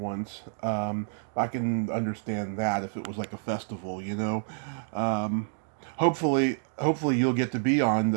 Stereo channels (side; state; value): left; silent; digital silence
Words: once. I can understand that if it was like a festival, you know. Hopefully you'll get to be on